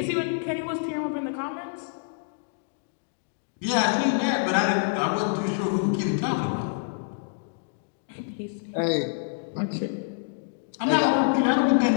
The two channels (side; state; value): right; silent; digital silence